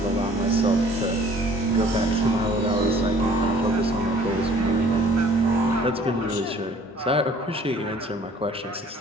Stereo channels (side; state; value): both; normal; correlation 0.54